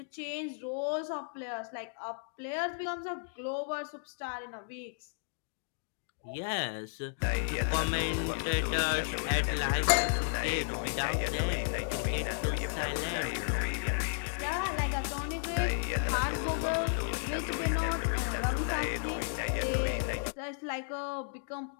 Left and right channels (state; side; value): silent; right; digital silence